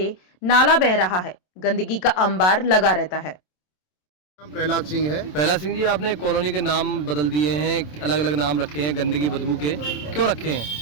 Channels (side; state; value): right; late; 27 ms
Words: नाला बह रहा है। गंदगी का अंबार लगा रहता है। नाम प्रहलाद सिंह है। प्रहलाद सिंह जी, आपने कॉलोनी के नाम बदल दिए हैं, अलग अलग नाम रखे हैं गंदगी बदबू के, क्यों रखे हैं?